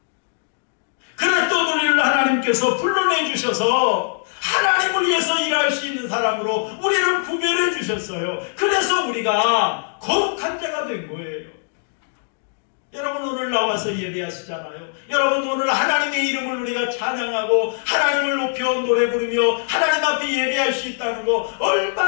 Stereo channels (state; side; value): silent; right; digital silence